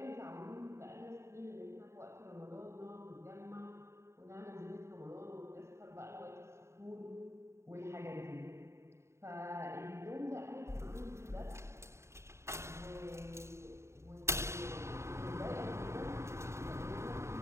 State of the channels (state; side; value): late; left; 0.13 ms